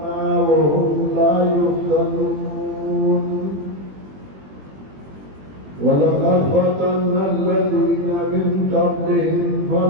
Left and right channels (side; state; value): left; late; 21 ms